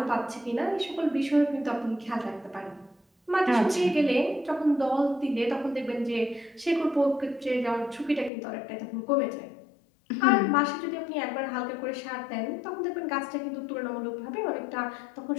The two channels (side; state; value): right; drops out; at 8.3 s